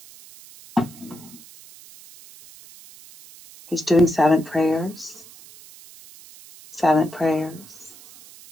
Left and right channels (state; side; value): noise; right; hiss, 21 dB below the sound